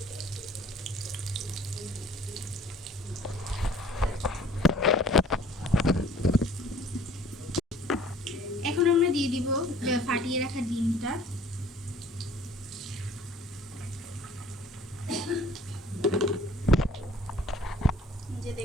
এখন আমরা দিয়ে দিব ফাটিয়ে রাখা ডিমটা। যে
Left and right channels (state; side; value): normal; both; correlation 0.53